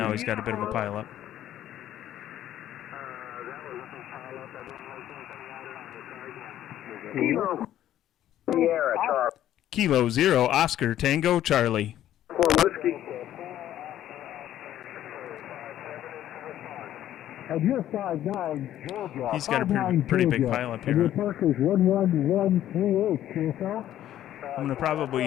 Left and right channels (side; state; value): right; quieter; 12.1 dB